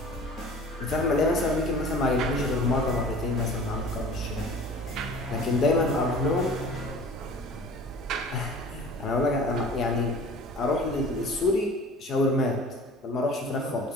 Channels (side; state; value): both; normal; correlation 0.44